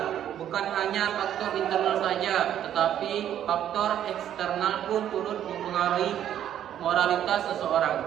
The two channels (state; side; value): quieter; left; 10.6 dB